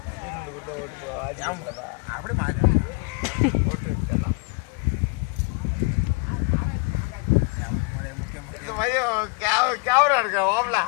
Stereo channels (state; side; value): quieter; right; 31.4 dB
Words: ஓட்டு போவா அப்படி மாறி ஓட்டு எடுத்துடலாம். கேமரா இருக்க ஓம்ல